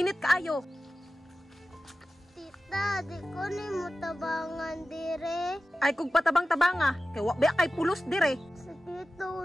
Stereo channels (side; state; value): both; normal; correlation 0.94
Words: kaayo. Tita, di ko ni mo tabangan dire. Ay kung patabang-tabanga, kay wakbe kay pulos dire. Sa